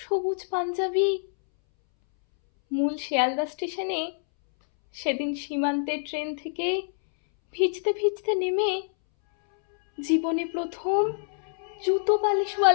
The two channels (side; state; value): right; silent; 61 dB below the other